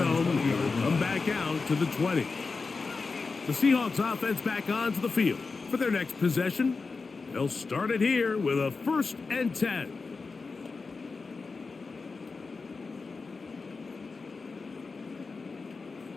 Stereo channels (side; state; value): right; quieter; 4.3 dB